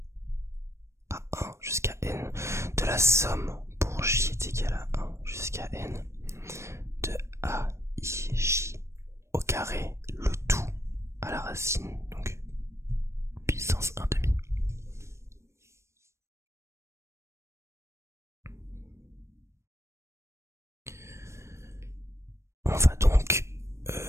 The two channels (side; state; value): left; late; 0.13 ms